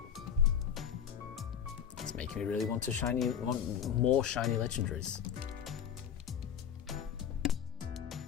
me really want more shiny legendaries.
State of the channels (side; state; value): right; quieter; 8.5 dB